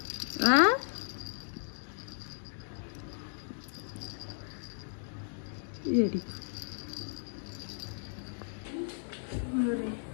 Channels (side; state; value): right; silent; digital silence